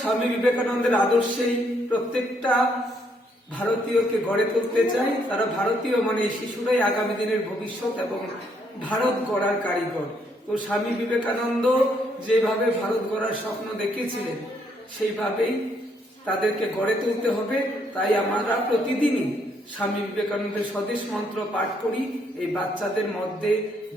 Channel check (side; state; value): both; normal; correlation 0.71